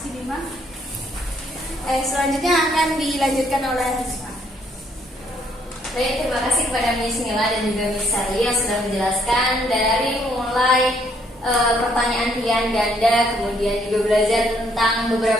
Bima. Selanjutnya akan dilanjutkan oleh Risma. Baik, terima kasih kepada Miss Mila dan juga Miss Sally yang sudah menjelaskan dari mulai pertanyaan pilihan ganda, kemudian juga belajar tentang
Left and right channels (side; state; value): both; normal; correlation 0.68